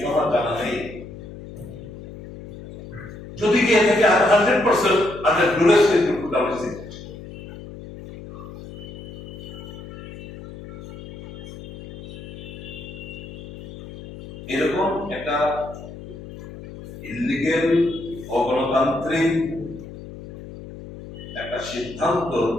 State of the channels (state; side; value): noise; left; hum, 13 dB below the sound